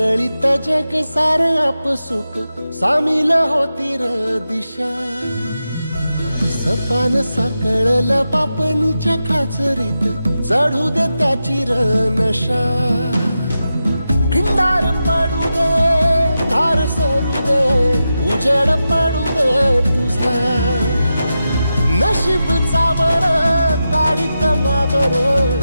जग सार आपसुक सामील होती र दिशा सपान साकळल पापणीच्या खाचरीत चढू दे त्याची र नशा खिंडार पडू दे धार सरू दे उजेड पडू दे तुझा नशीब चावर गाडीत मागर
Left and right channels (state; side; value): inverted; both; correlation -0.90